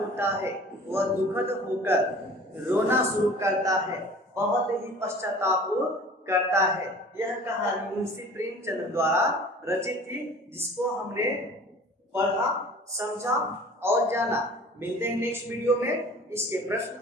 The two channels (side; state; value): both; normal; correlation 0.45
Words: है, वह दुखद होकर रोना शुरू करता है, बहुत ही पश्चाताप करता है। यह कहानी मुंशी प्रेमचंद द्वारा रचित थी, जिसको हमने पढ़ा, समझा और जाना। मिलते हैं नेक्स्ट वीडियो में इसके प्रश्न